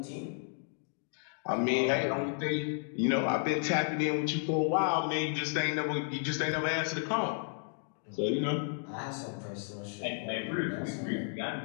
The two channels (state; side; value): silent; right; 56 dB below the other